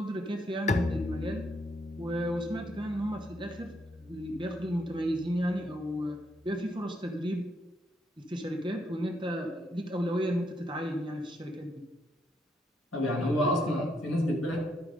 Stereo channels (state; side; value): normal; both; correlation 0.76